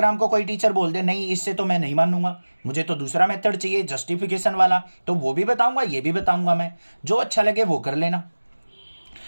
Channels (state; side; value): inverted; both; correlation -1.00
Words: को कोई टीचर बोल दे नहीं इससे तो मैं नहीं मानूंगा, मुझे तो दूसरा मेथड चाहिए जस्टिफिकेशन वाला, तो वो भी बताऊंगा, ये भी बताऊंगा मैं, जो अच्छा लगे वो कर लेना।